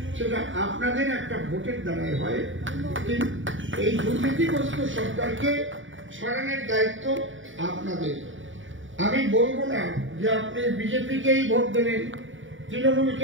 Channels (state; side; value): late; left; 0.56 ms